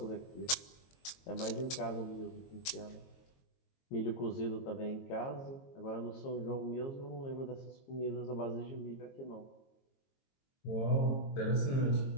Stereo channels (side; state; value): right; late; 22 ms